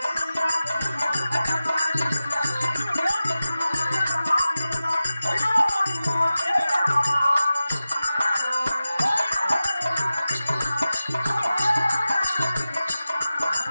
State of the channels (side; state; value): both; inverted; correlation -0.95